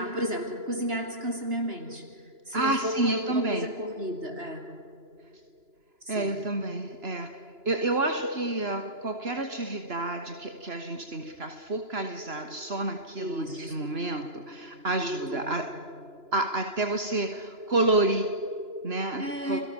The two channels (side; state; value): left; late; 2.9 ms